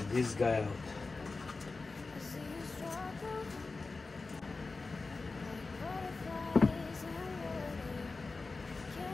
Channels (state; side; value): quieter; right; 3.8 dB